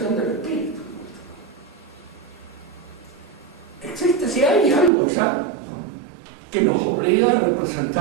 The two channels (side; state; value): left; drops out; at 4.9 s